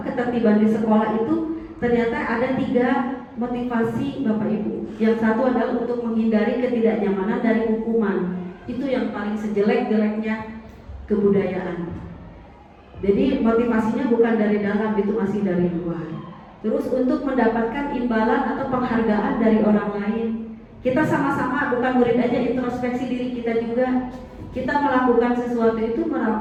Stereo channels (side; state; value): both; identical; correlation 1.00